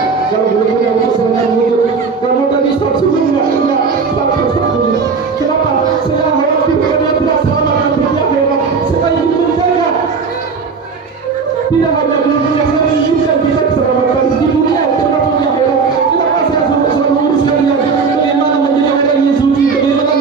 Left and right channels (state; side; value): quieter; left; 5.2 dB